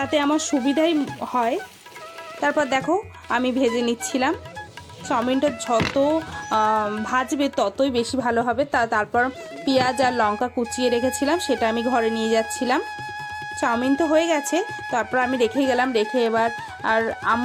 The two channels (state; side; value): identical; both; correlation 1.00